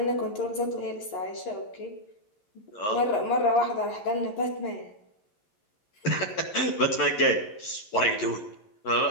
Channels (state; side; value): late; right; 11 ms